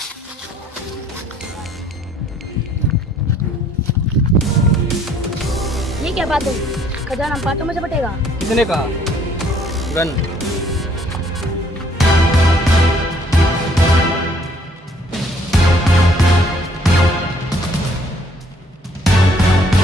ये क्या बात हुई? खजाना बातों में से बटेगा। किसने कहा? गन।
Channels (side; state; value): both; normal; correlation 0.63